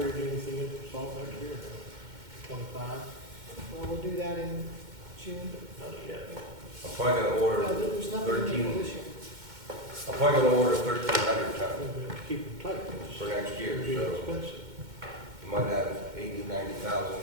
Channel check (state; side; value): late; left; 2.1 ms